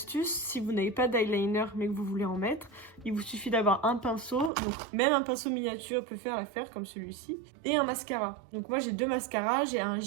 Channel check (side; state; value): left; drops out; at 4.5 s